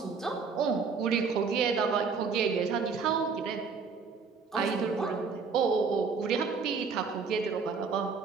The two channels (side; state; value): left; quieter; 5.2 dB